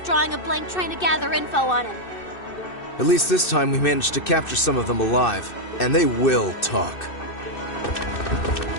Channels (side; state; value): right; late; 2.6 ms